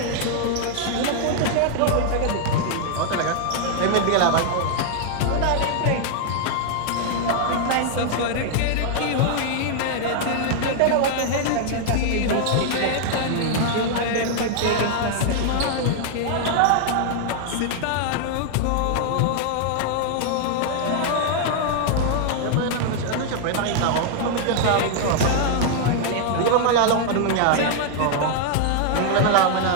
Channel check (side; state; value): both; different; correlation 0.00